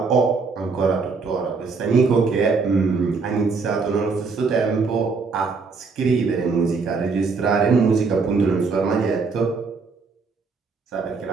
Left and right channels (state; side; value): quieter; left; 4.6 dB